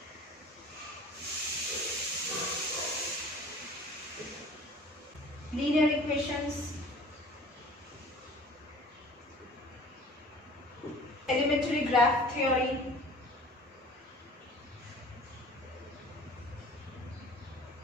linear equations, elementary graph theory,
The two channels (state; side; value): normal; both; correlation 0.46